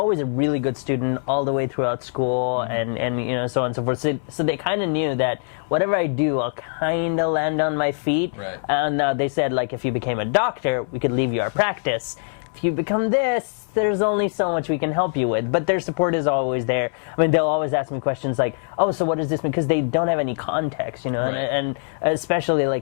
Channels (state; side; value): silent; right; 61 dB below the other